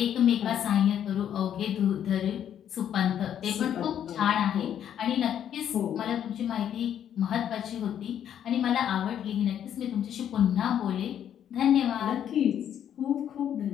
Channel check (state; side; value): quieter; right; 9.7 dB